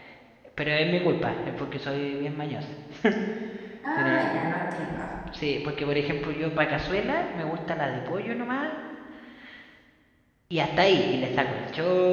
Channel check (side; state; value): both; identical; correlation 1.00